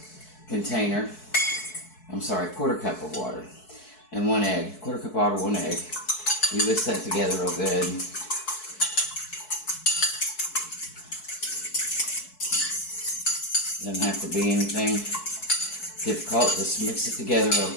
container. I'm sorry, 1/4 cup of water. And 1 egg. 1/4 cup of water, 1 egg. You whisk that together real good. Doesn't have to be anything difficult. Just mix it together real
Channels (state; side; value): late; right; 4.6 ms